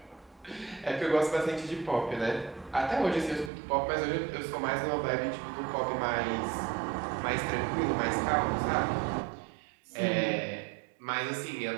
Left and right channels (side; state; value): left; drops out; at 3.5 s